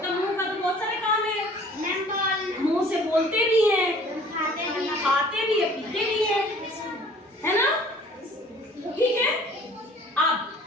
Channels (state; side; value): normal; both; correlation 0.51